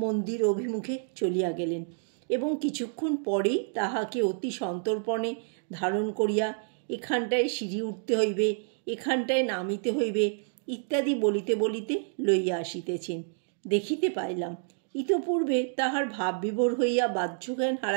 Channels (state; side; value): silent; left; digital silence